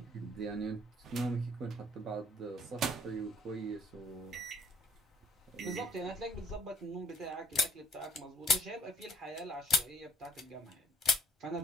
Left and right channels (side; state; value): both; normal; correlation 0.60